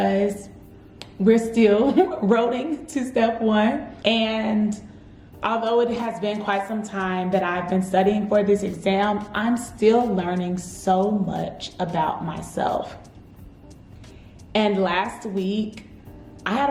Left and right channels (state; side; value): identical; both; correlation 1.00